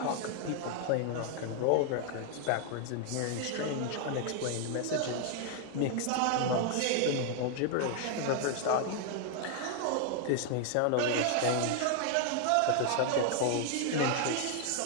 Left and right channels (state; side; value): different; both; correlation 0.00